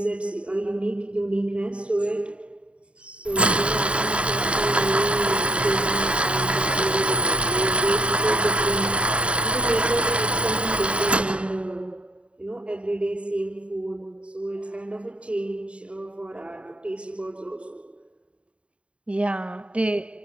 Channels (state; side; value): late; left; 0.060 ms